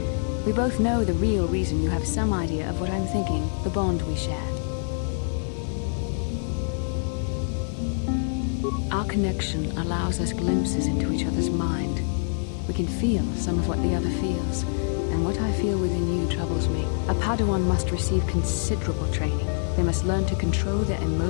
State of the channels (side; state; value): right; silent; 61 dB below the other